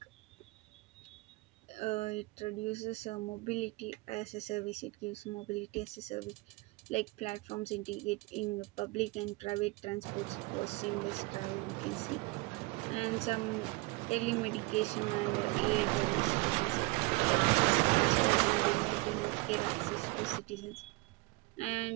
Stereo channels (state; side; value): quieter; left; 24.5 dB